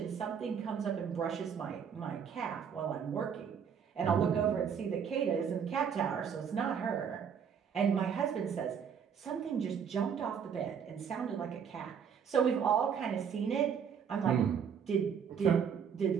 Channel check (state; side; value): quieter; left; 7.4 dB